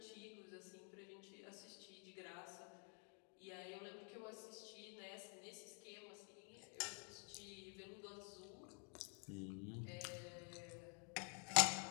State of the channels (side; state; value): right; quieter; 37.1 dB